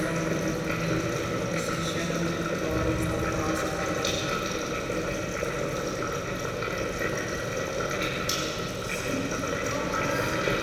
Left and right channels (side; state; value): both; identical; correlation 1.00